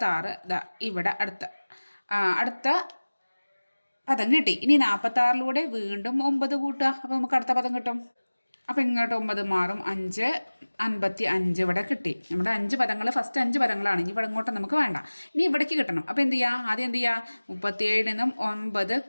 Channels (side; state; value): both; inverted; correlation -1.00